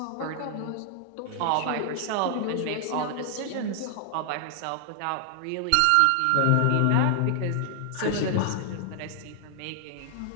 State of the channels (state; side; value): different; both; correlation 0.00